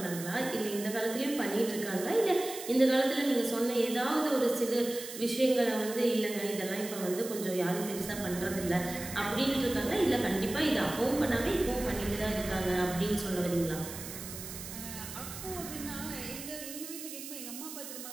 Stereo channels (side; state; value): right; noise; hiss, 10 dB below the sound